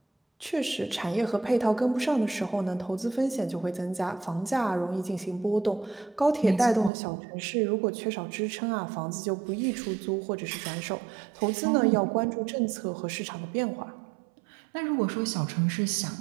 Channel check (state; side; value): drops out; left; at 6.9 s